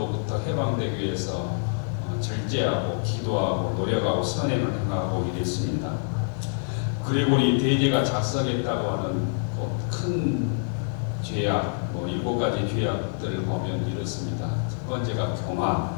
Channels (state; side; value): silent; right; 59 dB below the other